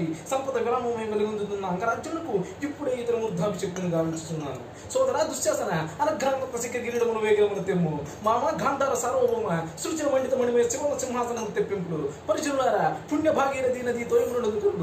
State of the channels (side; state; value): both; identical; correlation 1.00